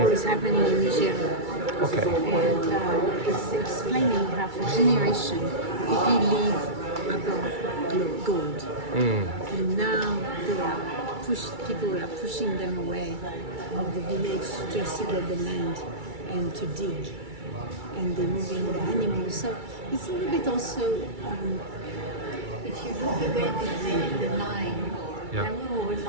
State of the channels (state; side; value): late; left; 2.3 ms